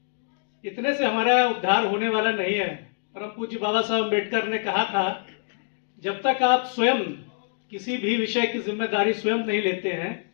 इतने से हमारा उद्धार होने वाला नहीं है। परम पूज्य बाबा साहब अम्बेडकर ने कहा था, जब तक आप स्वयं किसी भी विषय की जिम्मेदारी स्वयं नहीं लेते हैं,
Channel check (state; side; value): silent; right; digital silence